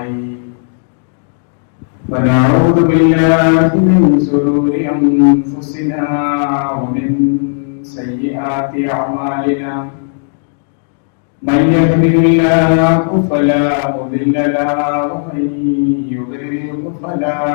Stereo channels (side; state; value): right; silent; digital silence